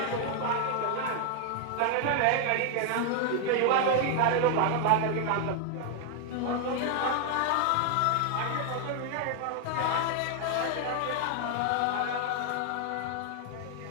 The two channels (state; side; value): different; both; correlation 0.00